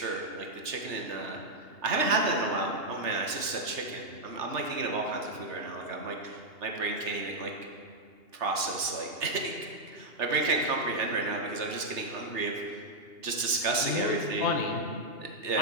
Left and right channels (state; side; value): late; left; 3.3 ms